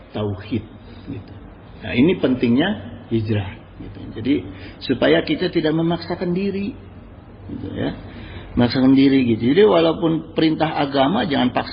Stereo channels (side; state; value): both; identical; correlation 1.00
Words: gitu. Nah, ini pentingnya hijrah. Gitu. Jadi supaya kita tidak memaksakan diri, gitu, ya, memaksakan diri gitu. Jadi walaupun perintah agama jangan